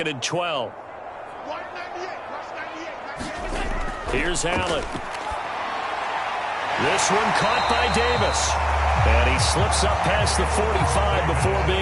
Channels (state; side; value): identical; both; correlation 1.00